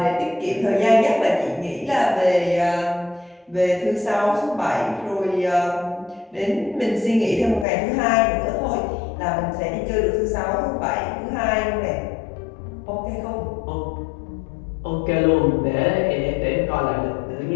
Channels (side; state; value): right; drops out; at 7.7 s